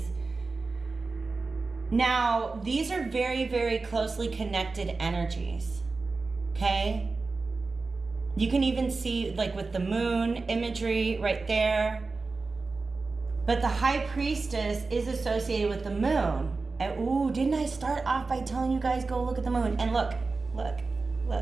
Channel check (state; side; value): quieter; left; 3.9 dB